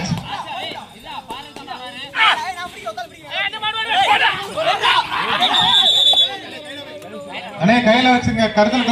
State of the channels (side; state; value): both; identical; correlation 1.00